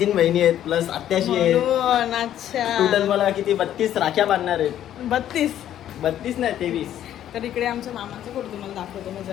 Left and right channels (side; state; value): right; quieter; 11.3 dB